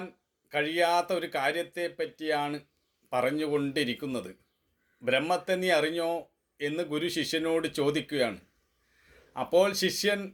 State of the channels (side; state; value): both; identical; correlation 1.00